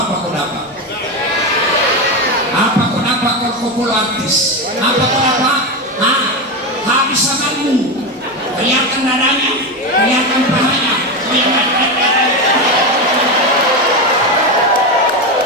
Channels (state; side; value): normal; both; correlation 0.15